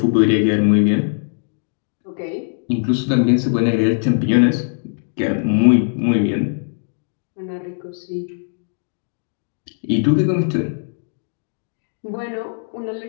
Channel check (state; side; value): silent; right; digital silence